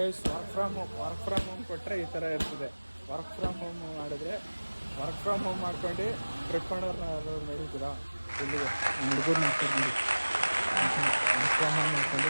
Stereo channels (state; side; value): inverted; both; correlation -1.00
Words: work from home ಕೊಟ್ಟರೆ ಈ ಥರ ಇರ್ತದೆ. ವರ್ಕ್ ಫ್ರಮ್ ಹೋಮ್ ಮಾಡಿದ್ರೆ ವರ್ಕ್ ಫ್ರಮ್ ಹೋಮ್ ಮಾಡ್ಕೊಂಡು ಟ್ರಿಪ್ ಮಾಡೋರ್ನ ನಡೀತೀರಾ ಇಲ್ಲಿಗೆ ಹುಡುಗರು ಮಾಡ್ತಾರೆ ನೋಡಿ. ವರ್ಕ್ ಫ್ರಮ್ ಹೋಮ್ ಮಾಡ್ಕೊಂಡು